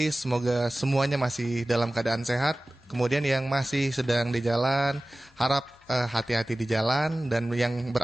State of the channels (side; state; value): both; normal; correlation 0.97